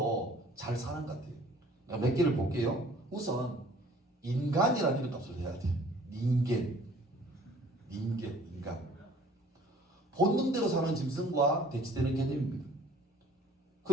잘 사는 것 같아요. 몇 개를 볼게요. 우선 인간이라는 이름값을 해야 돼요. 인간. 본능대로 사는 짐승과 대치되는 개념입니다.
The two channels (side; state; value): both; normal; correlation 0.53